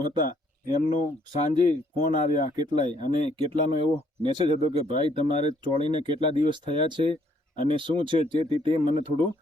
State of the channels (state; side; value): normal; both; correlation 0.67